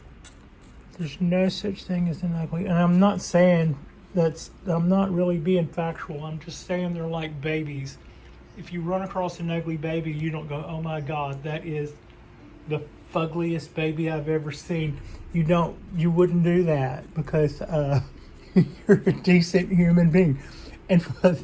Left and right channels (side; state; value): both; identical; correlation 1.00